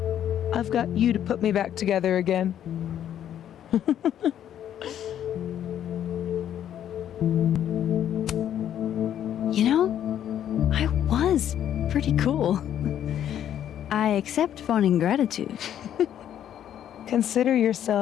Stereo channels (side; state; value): right; quieter; 10.3 dB